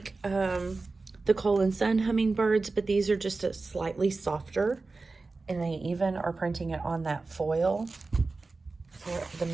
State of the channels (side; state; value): left; quieter; 3.7 dB